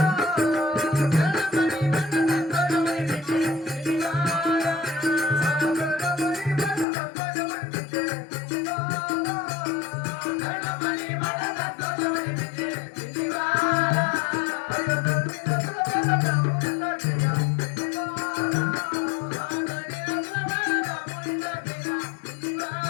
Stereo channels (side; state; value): right; drops out; at 6.9 s